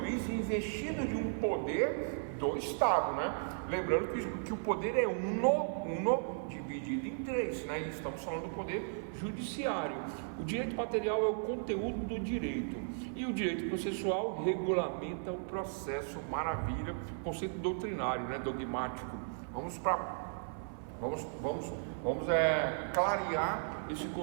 investido de um poder do Estado, né? Lembrando que o poder é uno dividido em três, né? E estamos falando do poder judiciário. O direito material é o conteúdo do direito e o direito processual regulamenta o processo. Maravilha, conceito doutrinário, né? Dogmático. Vamos clarear esse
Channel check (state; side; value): silent; left; 54 dB below the other